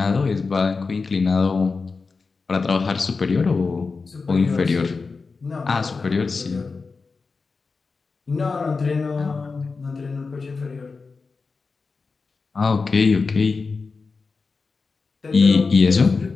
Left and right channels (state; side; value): quieter; right; 4.4 dB